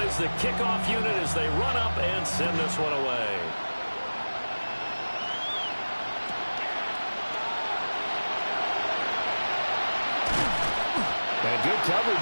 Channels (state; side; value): inverted; both; correlation -1.00